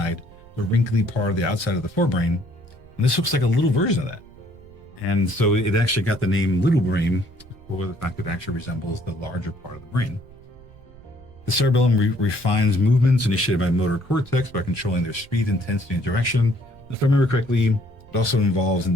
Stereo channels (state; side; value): noise; right; rumble, 23 dB below the sound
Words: the wrinkly part of the outside of the forebrain. And this looks like a little version of that. And so it actually got the name little brain for the fact that it actually resembles the larger part of the brain. The cerebellum refines movements initiated by motor cortex by controlling their speed, intensity, and direction. If I remember correctly, it also involves